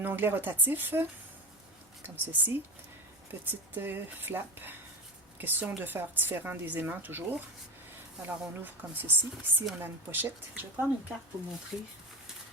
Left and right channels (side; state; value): both; normal; correlation 0.23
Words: onglet rotatif. comme ceci. Petite flap. Question de faire différent des aimants toujours. Alors on ouvre comme ceci. Ici on a une pochette. Je vais prendre une carte pour montrer